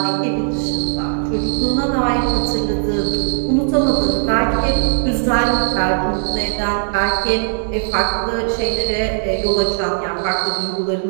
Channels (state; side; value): silent; left; digital silence